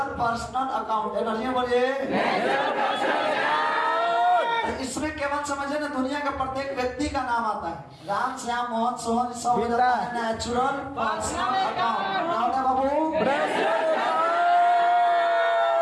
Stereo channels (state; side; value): identical; both; correlation 1.00